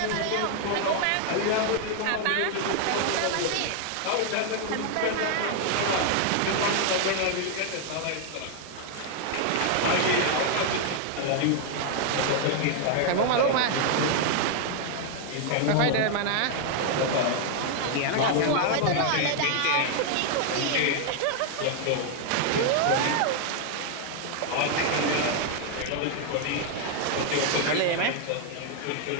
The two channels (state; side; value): different; both; correlation 0.00